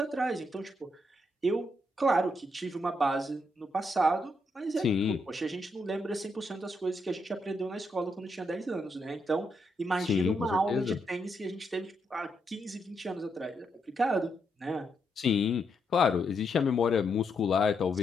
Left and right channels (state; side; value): normal; both; correlation 0.79